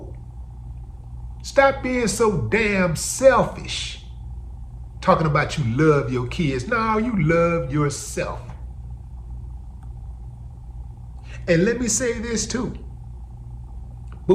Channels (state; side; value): identical; both; correlation 1.00